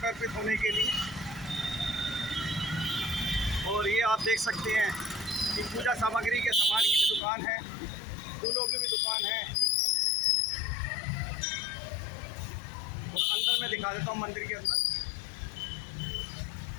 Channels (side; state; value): right; drops out; at 7.2 s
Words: अर्पित होने के लिए। और ये आप देख सकते हैं कि पूजा सामग्री के सामान की भी दुकान है, फूलों की भी दुकान है। और अंदर मैं दिखा देता हूँ मंदिर के अंदर।